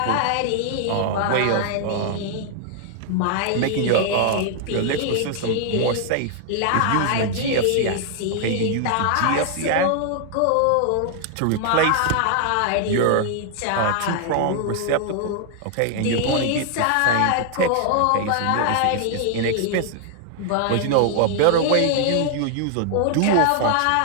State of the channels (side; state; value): both; different; correlation 0.00